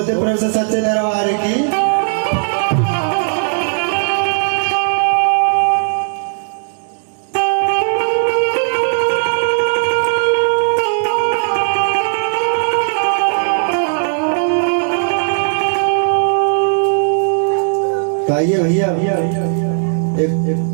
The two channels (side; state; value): left; silent; digital silence